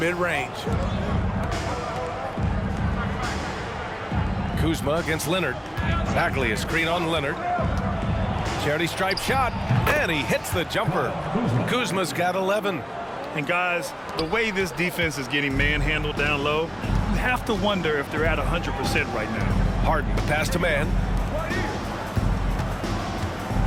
mid-range. Kuzma against Leonard. Bagley a screen on Leonard. Charity stripe shot, and he hits the jumper. Kuzma's got 11. And guys, the way this defense is getting manhandled down low, you have to wonder if they're at 100% right now. Harden, the pass to Mann.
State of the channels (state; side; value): identical; both; correlation 1.00